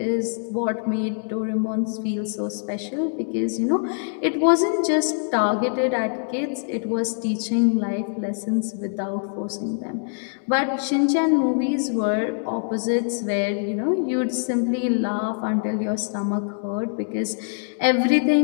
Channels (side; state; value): right; silent; digital silence